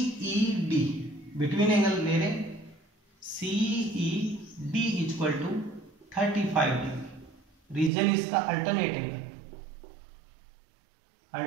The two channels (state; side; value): drops out; left; at 7.9 s